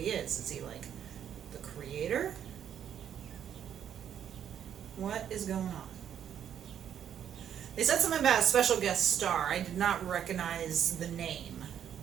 is? Is he like the creator? What is going on? They said something about a special guest star. I did not recognize the name,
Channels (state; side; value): quieter; left; 9.3 dB